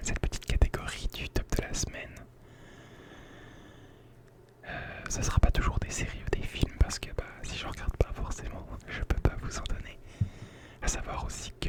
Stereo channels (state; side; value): identical; both; correlation 1.00